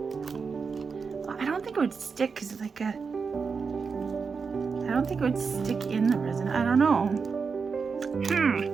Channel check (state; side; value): quieter; left; 5.3 dB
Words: I don't think it would stick because it's like a, I don't think it would stick in the resin. I don't know.